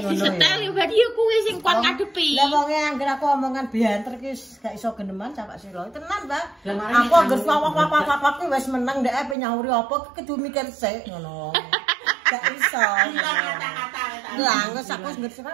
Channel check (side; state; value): left; drops out; at 9.3 s